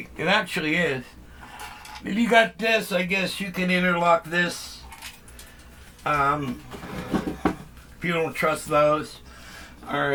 It actually is. If you got this, I guess you can interlock this. If you don't trust those.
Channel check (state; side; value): identical; both; correlation 1.00